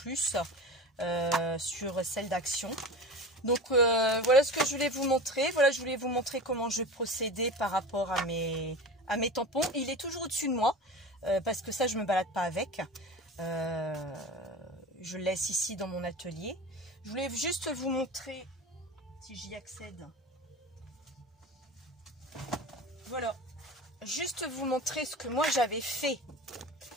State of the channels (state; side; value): normal; both; correlation 0.32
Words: sur celle d'Action. Donc, voilà ce que je voulais vous montrer. Voilà, je voulais vous montrer comment je procédais par rapport à mes tampons. Il est toujours au-dessus de moi. Parce que ça, je ne me balade pas avec. Je le laisse ici dans mon atelier. Je voulais juste vous montrer, si j'y accède. Voilà. Juste vous montrer ce que moi j'avais fait